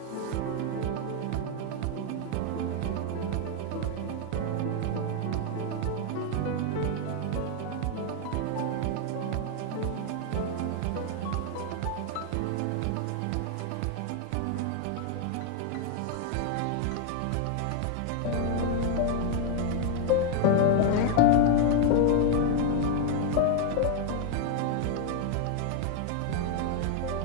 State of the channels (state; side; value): different; both; correlation 0.00